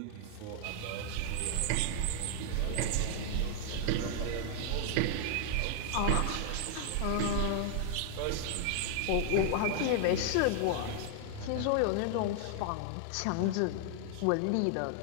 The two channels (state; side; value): different; both; correlation -0.01